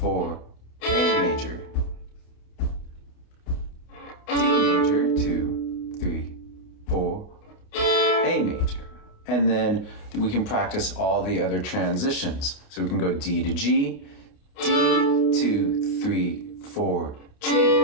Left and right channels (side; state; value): right; late; 29 ms